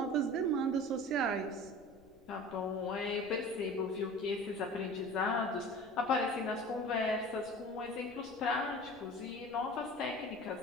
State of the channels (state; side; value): noise; left; rumble, 28 dB below the sound